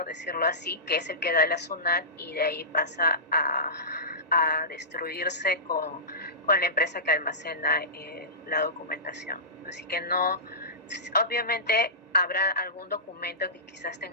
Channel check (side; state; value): both; normal; correlation -0.20